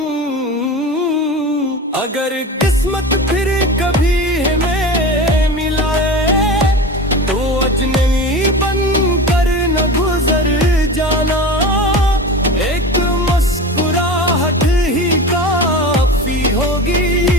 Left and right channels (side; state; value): both; normal; correlation 0.30